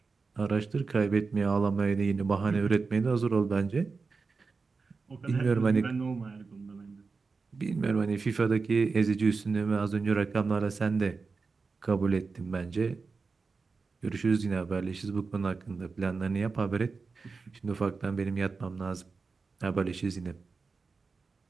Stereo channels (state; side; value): quieter; left; 4.5 dB